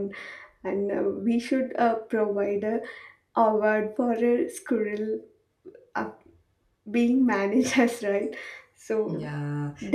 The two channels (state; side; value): identical; both; correlation 1.00